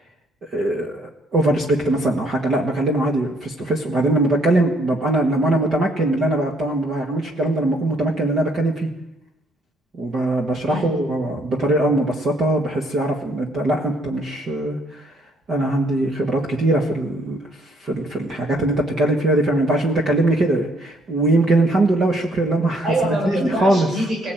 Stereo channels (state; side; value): normal; both; correlation 0.67